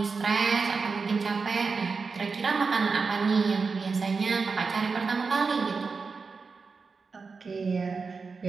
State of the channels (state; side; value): quieter; left; 4.7 dB